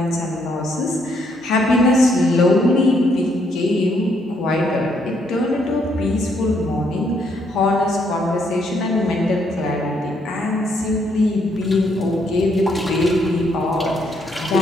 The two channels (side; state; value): both; normal; correlation 0.72